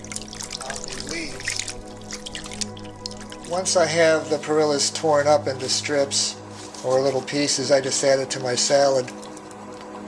on the leaves. Once I have the perillas torn up into strips or little pieces, I just add it to my salad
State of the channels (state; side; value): identical; both; correlation 1.00